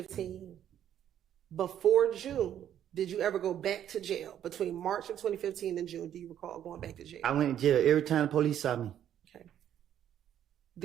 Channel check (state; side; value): quieter; left; 10.4 dB